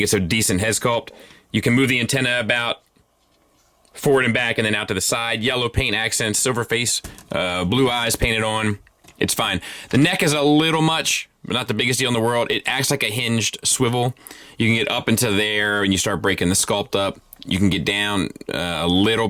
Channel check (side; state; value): both; identical; correlation 1.00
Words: it's a decent head sculpt. You can move the antenna about forward and back and then out to the side. Yellow paint accents, silver face, blue eyes painted on. It's fine. The neck is a little much, but not the biggest deal in the world. It acts like a hinged swivel. You can get up into there and you start breaking the sculpt up. You can get down a little